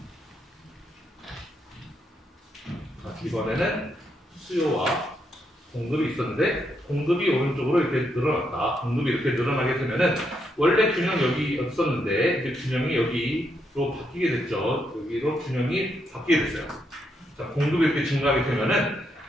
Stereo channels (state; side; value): normal; both; correlation 0.79